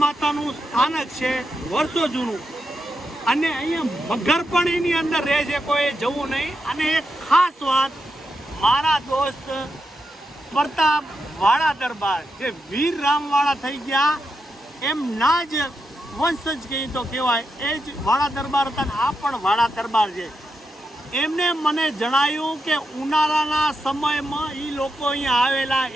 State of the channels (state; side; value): normal; both; correlation 0.85